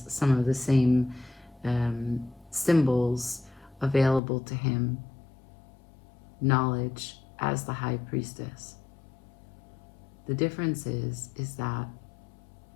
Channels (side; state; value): right; drops out; at 4.2 s